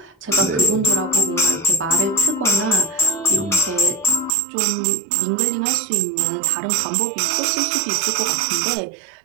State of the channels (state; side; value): drops out; left; at 4.3 s